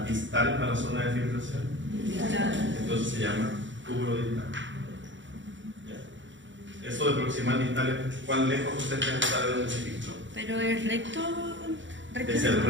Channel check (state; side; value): late; left; 0.54 ms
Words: distal a la zona de filtración? Distal. Entonces se llama túbulo distal. ¿Ya? Eso de proximal distal es cuán lejos usted está de donde se filtró. Pero es recto. Es el